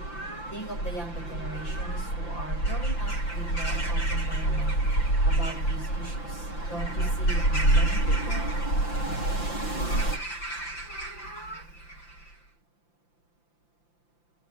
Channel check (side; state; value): right; late; 5.8 ms